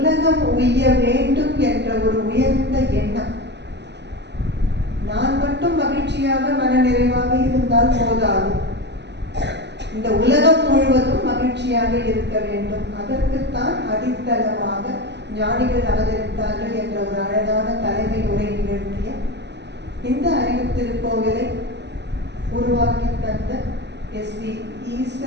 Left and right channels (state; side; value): late; left; 0.50 ms